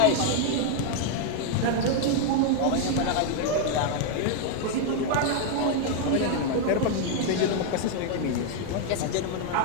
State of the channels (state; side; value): different; both; correlation 0.00